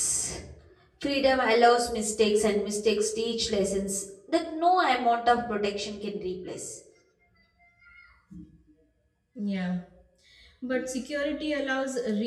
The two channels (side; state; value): both; identical; correlation 1.00